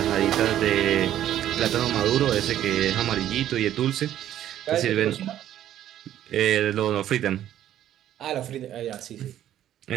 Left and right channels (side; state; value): left; quieter; 11.8 dB